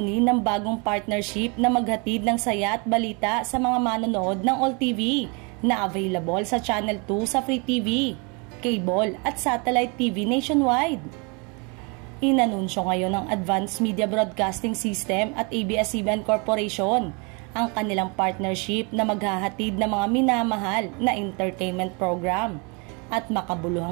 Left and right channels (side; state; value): left; quieter; 32.0 dB